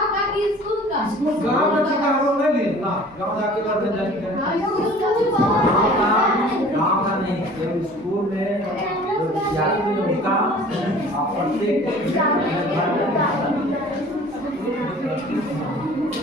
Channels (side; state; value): both; normal; correlation 0.47